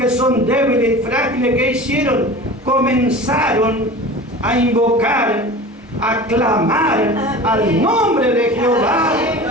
son débiles y frágiles, ¿qué hicieron? Comenzaron a invocar, a clamar al nombre de Jehová,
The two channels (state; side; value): normal; both; correlation 0.36